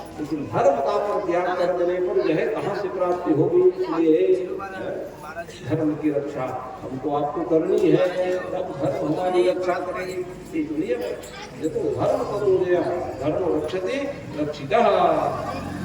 लेकिन धर्म का परित्याग कर देने पर यह कहाँ से प्राप्ति होगी? इसलिए धर्म की रक्षा हमको आपको करनी है, तब धर्म हमारी रक्षा करेगी। इसलिए ये तो धर्म करो धर्म रक्षते रक्षिता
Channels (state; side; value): identical; both; correlation 1.00